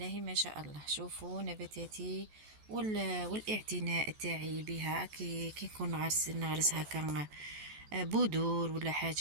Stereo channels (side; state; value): left; late; 14 ms